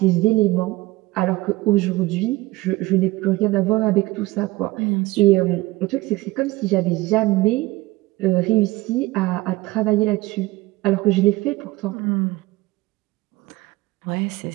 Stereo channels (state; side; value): quieter; left; 20.0 dB